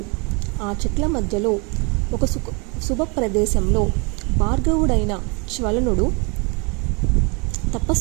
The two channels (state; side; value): quieter; left; 31.7 dB